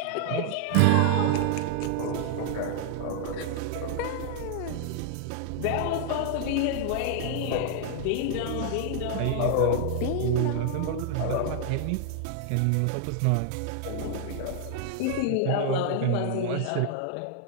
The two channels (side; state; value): both; different; correlation 0.00